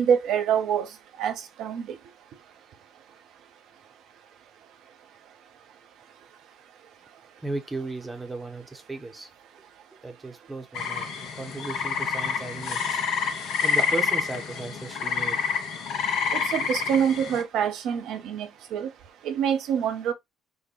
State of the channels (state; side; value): normal; both; correlation 0.57